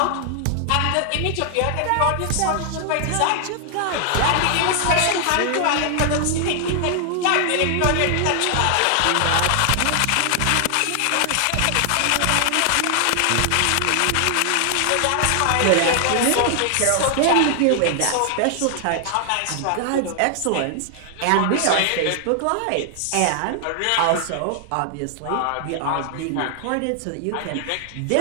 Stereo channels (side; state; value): both; different; correlation 0.00